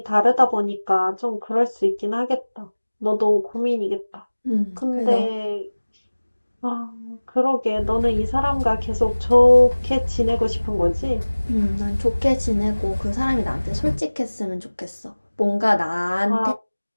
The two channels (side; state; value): both; inverted; correlation -1.00